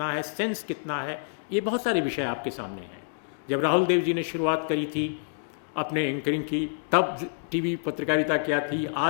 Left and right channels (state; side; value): silent; right; digital silence